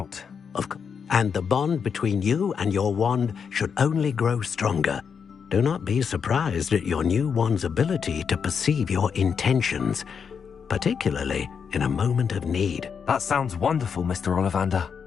And the bond between you and your wand should only grow stronger. Do not be surprised at your new wand's ability to perceive your intentions, particularly in a moment of need. That sounds wonderful, Mr. Ollivander.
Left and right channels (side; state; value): right; quieter; 6.6 dB